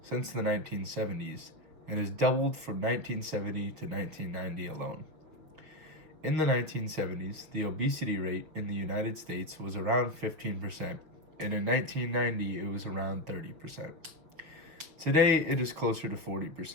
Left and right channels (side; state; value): left; late; 5.9 ms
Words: since the 1970s and has doubled from 1970 to 1990 alone. In the 1970s, the obesity rate in the United States was around 15%, and in 1990 it was around 30%. Today it is closer to